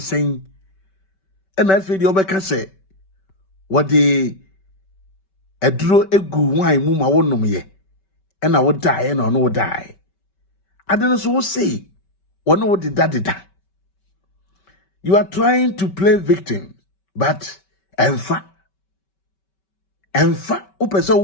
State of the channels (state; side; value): late; right; 5.2 ms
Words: And I feel the Obeka say, what the Edro egu wine muma won't know me, and I would die and I no die. I don't so say, what no did that. You are trying to play victim, but enfa,